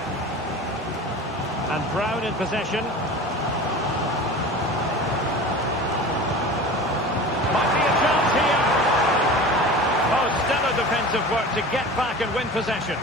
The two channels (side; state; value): both; normal; correlation 0.36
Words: And Brown in possession. Might be a chance here. Oh, stellar defensive work to get back and win possession.